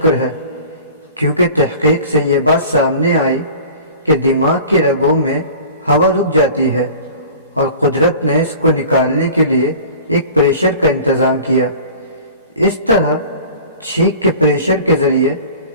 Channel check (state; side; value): inverted; both; correlation -0.42